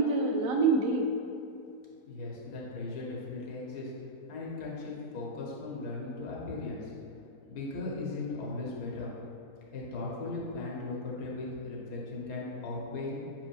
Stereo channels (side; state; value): right; late; 4.7 ms